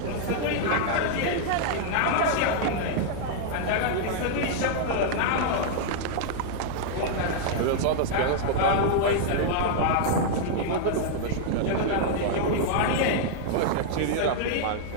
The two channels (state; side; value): different; both; correlation -0.01